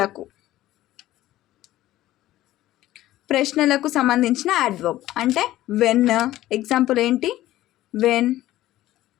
ప్రశ్నలకు సంబంధించిన అడ్వర్బ్. అంటే వెన్, ఎగ్జాంపుల్ ఏంటి, వెన్,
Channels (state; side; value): quieter; right; 15.1 dB